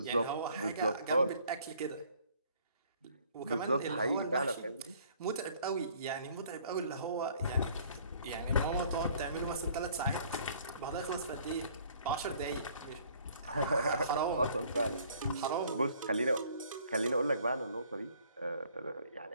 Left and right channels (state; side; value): inverted; both; correlation -0.58